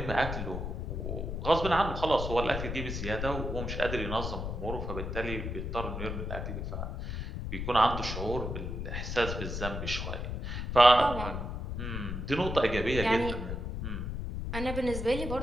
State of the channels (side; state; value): left; noise; rumble, 4 dB below the sound